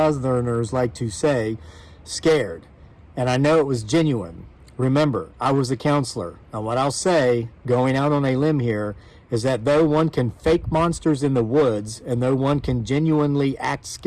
like to say, scared. And I know it was genuine. Remember, I was a counselor, and what I'll say, going out on a limb here, is that though one can fake monsters in the woods, and though one can genuinely act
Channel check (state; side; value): identical; both; correlation 1.00